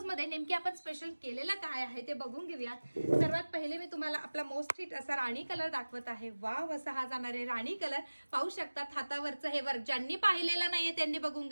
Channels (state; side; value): inverted; both; correlation -1.00